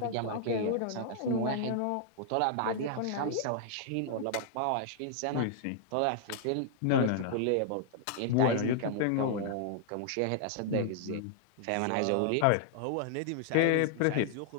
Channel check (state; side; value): different; both; correlation -0.01